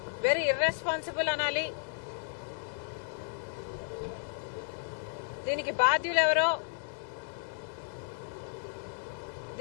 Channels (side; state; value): right; silent; digital silence